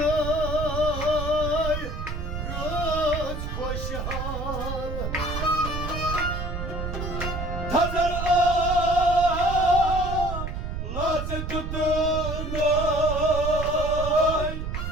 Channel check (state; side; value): noise; right; rumble, 4 dB below the sound